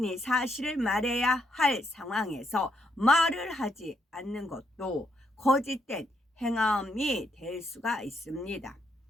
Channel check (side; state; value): both; normal; correlation 0.76